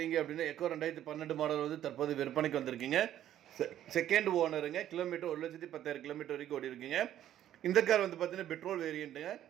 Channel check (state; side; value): quieter; left; 11.7 dB